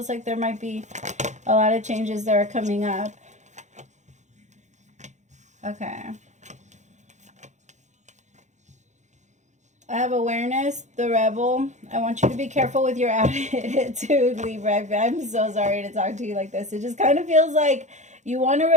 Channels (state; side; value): late; left; 0.34 ms